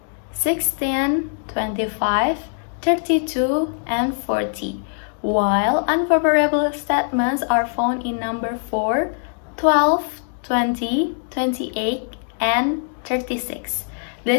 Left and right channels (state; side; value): silent; right; digital silence